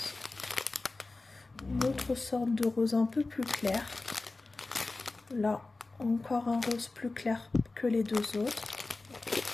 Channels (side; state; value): right; quieter; 3.4 dB